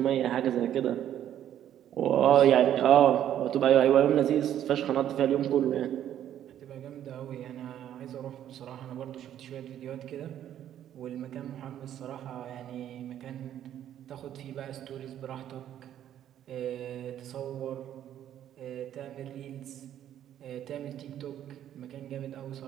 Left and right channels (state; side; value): quieter; left; 10.9 dB